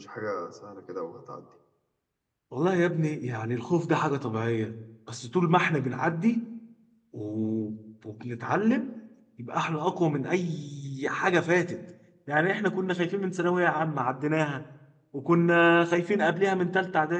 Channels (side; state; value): both; identical; correlation 1.00